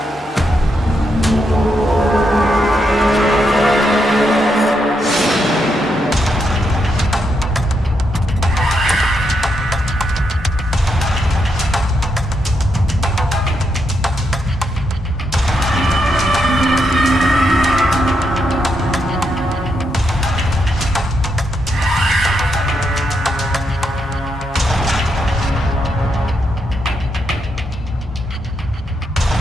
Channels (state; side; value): normal; both; correlation 0.81